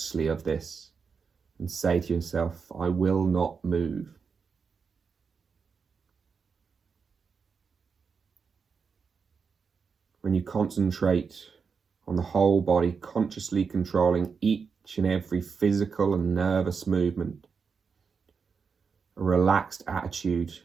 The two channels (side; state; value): left; quieter; 5.6 dB